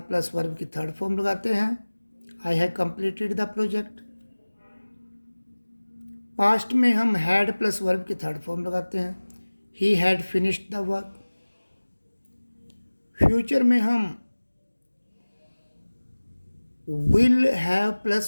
वर्ब की थर्ड फॉर्म लगाते हैं, I have completed the project. Past में हम हैड प्लस वर्ब की थर्ड फॉर्म लगाते हैं, he had finished the work. Future में हम विल हैव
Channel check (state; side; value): inverted; both; correlation -1.00